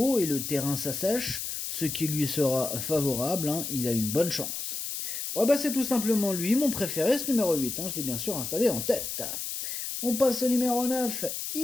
et le terrain s'assèche, ce qui lui sera favorable, hein, il a une bonne chance. Ouais, bah c'est tout simplement lui, mon préféré, ce numéro 8, hein, je l'ai bien sûr installé en tête. On passe au numéro 9,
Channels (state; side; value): noise; left; hiss, 5 dB below the sound